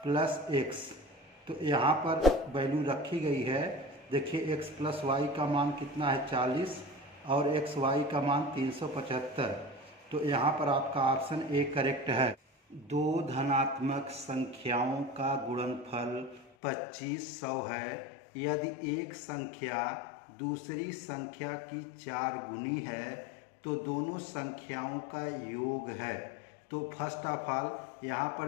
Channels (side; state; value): right; drops out; at 16.5 s